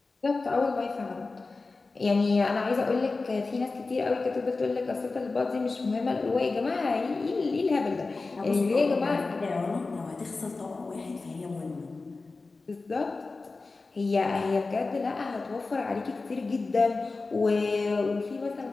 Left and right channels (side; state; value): right; quieter; 3.8 dB